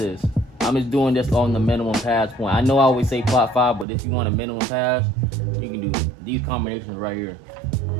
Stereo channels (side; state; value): left; drops out; at 3.9 s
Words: I'm just doing this on the minimum pass point. I know I always say plot 5, but if you want a minimum pass, you can do these combinations right here.